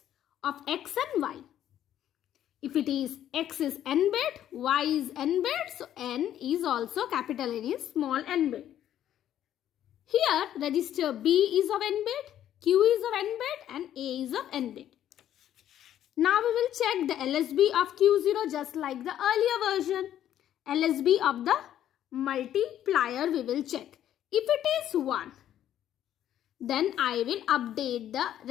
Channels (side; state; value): right; quieter; 11.2 dB